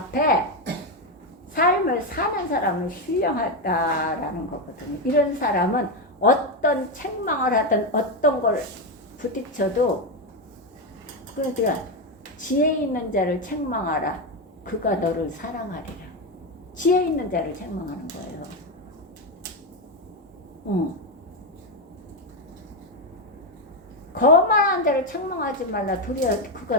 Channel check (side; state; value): both; normal; correlation 0.09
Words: 삶을 사는 사람은 신령하다라는 거거든요. 이런 사람은 어떤 책망을 하든 어떤 걸 부딪혀도 그러니까 지혜 있는 자를 책망하라. 그가 너를 사랑하리라. 지혜 있는 자를 책망하는 거예요. 거만한 자를 책망하지 말라. 도리어